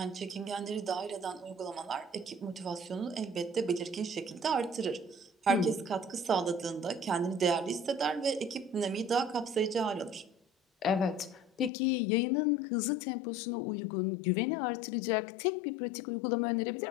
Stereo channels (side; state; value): right; drops out; at 11.7 s